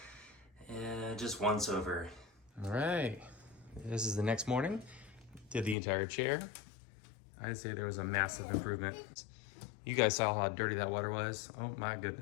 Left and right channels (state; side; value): drops out; right; at 5.8 s